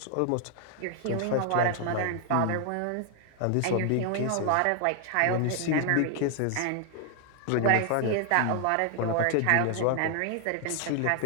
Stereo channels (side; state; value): both; different; correlation 0.00